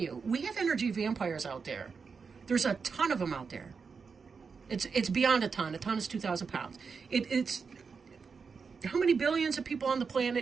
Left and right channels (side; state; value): left; quieter; 5.4 dB